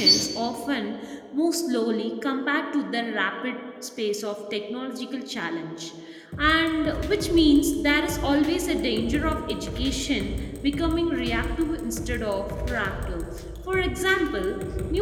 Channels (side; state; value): both; identical; correlation 1.00